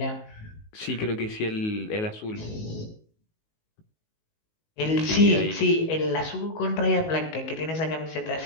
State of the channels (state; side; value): late; right; 19 ms